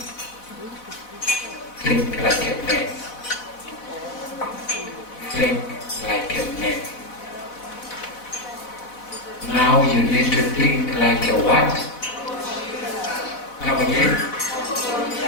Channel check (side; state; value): right; late; 4.1 ms